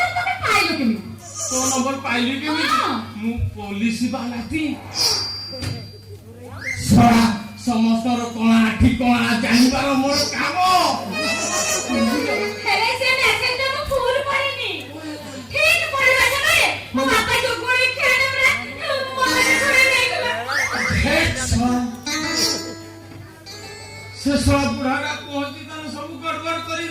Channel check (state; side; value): identical; both; correlation 1.00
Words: ତମେ ପାଇଲ କେମିତି? ତୋ ନମ୍ବର ପାଇଲି କେମିତି? ମୁଁ ପୋଲିସ ବାଲାଟି। ଶଳା ସମସ୍ତର କଣା ଠିକଣା ଜାଣିବାର ମୋର କାମ। ହେଲେ ସେ ମେସେଜଟା ମୁଁ ଫୁଲ ପଢିନି। ଠିକ ପଢିବା ସମୟରେ ମୋ ବାପା ଯୋଗୁଳି ଖେଳରେ ମନେ କରି ନେଇଗଲା। ସେ ଶଳା ବୁଢାଟା ପହଞ୍ଚି ତାର ସବୁ ଗଡବଡ